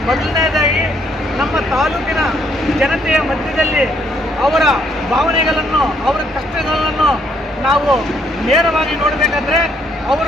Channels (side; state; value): both; normal; correlation 0.69